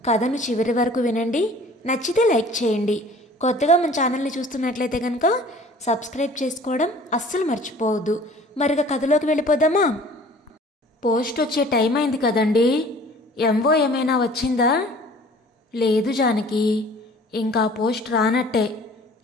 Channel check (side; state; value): both; normal; correlation 0.49